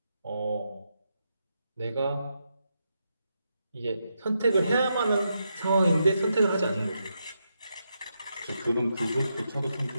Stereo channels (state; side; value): inverted; both; correlation -0.83